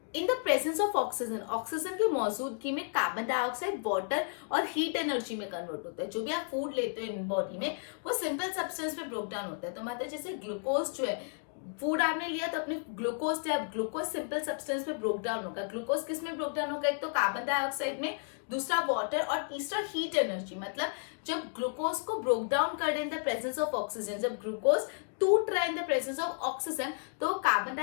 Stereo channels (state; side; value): silent; right; 56 dB below the other